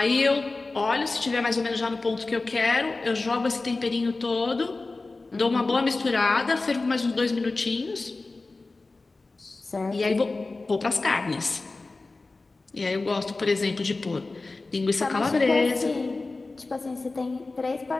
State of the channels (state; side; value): quieter; right; 3.5 dB